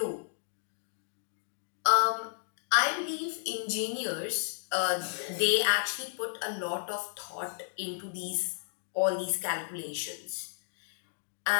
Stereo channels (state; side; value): silent; right; digital silence